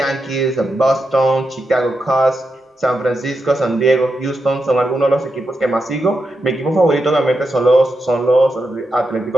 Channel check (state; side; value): normal; both; correlation 0.86